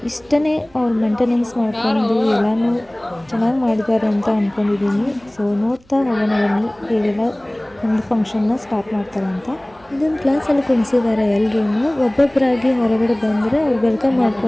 ಇಷ್ಟೇ ಅವ್ರು ಮೇಂಟೆನೆನ್ಸ್ ಮಾಡಿಕೊಂಡು ಎಲ್ಲನೂ ಚೆನ್ನಾಗಿ ಮಾಡಿದ್ದಾರೆ ಅಂತ ಅಂದ್ಕೊಂಡಿದ್ದೀನಿ. ಸೊ ನೋಡ್ತಾ ಹೋಗೋಣ ಬನ್ನಿ ಹೇಗೆಲ್ಲ ಒಂದು ಫಂಕ್ಷನ್ನ ಸ್ಟಾರ್ಟ್ ಮಾಡ್ತಾರೆ ಅಂತ. ಇದೊಂದು ಕ್ಲಾಸಲ್ಲಿ ಕುಣಿಸಿದ್ದಾರೆ ಎಲ್ಲರೂ. ಒಬ್ಬೊಬ್ಬರಾಗಿ ಹೊರಗಡೆ ಬಂದರೆ ಅವ್ರು ವೆಲ್ಕಮ್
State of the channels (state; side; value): noise; right; hum, 30 dB below the sound